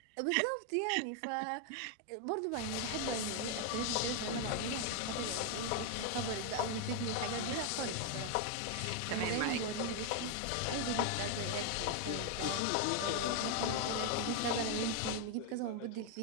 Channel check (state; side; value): different; both; correlation 0.01